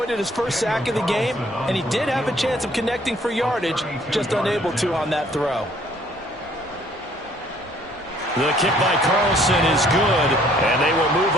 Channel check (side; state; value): both; normal; correlation 0.60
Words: his first sack of the game, and he did have a chance of connecting for yardage, just unable to on that throw. The kick by Carlson is good, and they will move